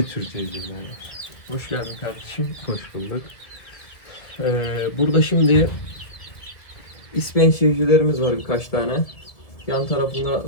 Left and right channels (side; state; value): right; late; 1.9 ms